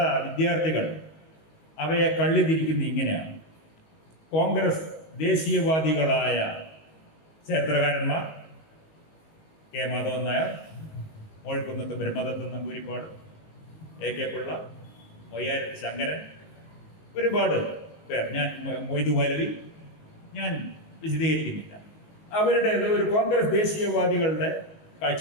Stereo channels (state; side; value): late; right; 19 ms